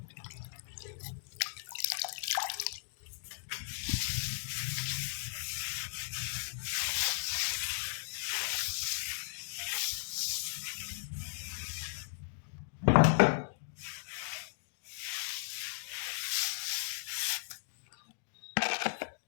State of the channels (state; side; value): silent; right; digital silence